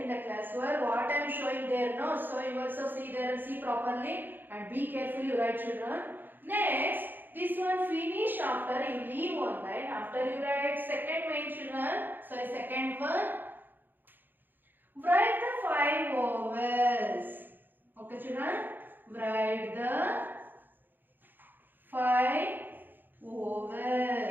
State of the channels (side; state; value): left; late; 0.091 ms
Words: in the class where what I am showing there, no? So you also see there and see properly and be careful, you write, children. Next, this one finish after you leave one line. After you write second main, children. So second one, write the 5 vowels. Okay, children, write the 5